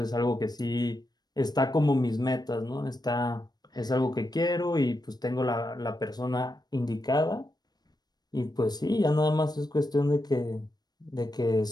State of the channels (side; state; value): right; late; 0.19 ms